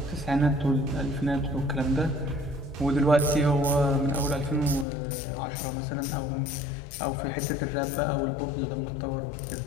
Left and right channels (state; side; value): drops out; right; at 4.9 s